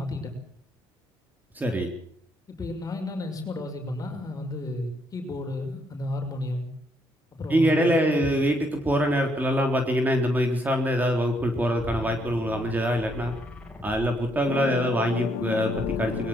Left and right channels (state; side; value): normal; both; correlation 0.73